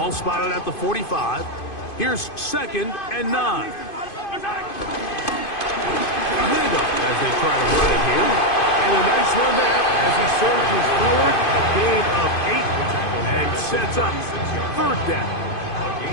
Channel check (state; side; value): late; right; 2.5 ms